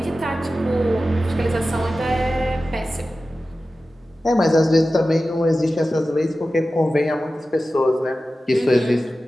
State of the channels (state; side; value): normal; both; correlation 0.94